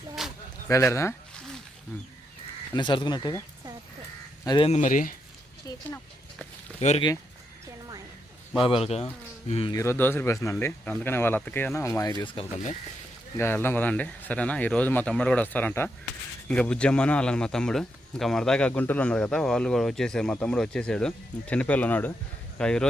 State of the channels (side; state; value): both; normal; correlation 0.82